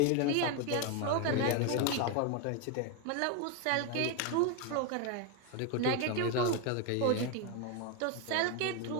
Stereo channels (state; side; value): different; both; correlation 0.02